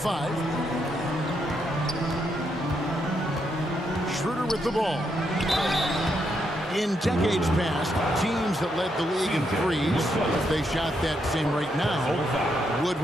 Schroeder with the ball. In decades past, teams that led the league in threes, if they shot that same rate now, would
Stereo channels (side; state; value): both; normal; correlation 0.79